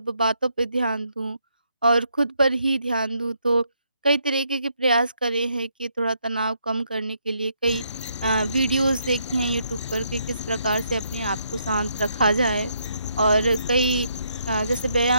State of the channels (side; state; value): both; inverted; correlation -0.75